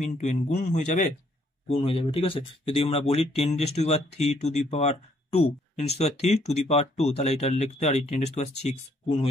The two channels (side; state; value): both; normal; correlation 0.68